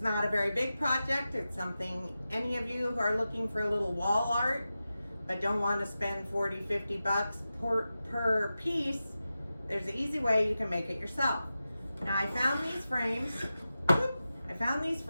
a very big project. It's something any of you who are looking for a little wall art but don't want to spend 40, 50 bucks per piece, there's an easy way you can make it yourself. Now I found these frames.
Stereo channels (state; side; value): inverted; both; correlation -0.93